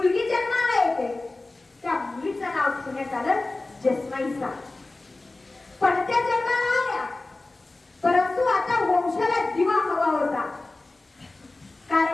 जन्माला येते. त्या मुलीचं नाव ठेवण्यात आलं जसमाईसा. पण त्या जन्माला आल्या, परंतु आता वंशाला दिवा हवा होता.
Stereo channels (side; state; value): right; quieter; 3.1 dB